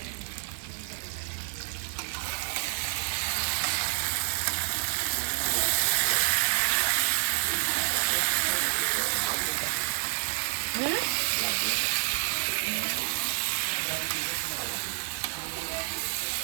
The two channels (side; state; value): left; silent; digital silence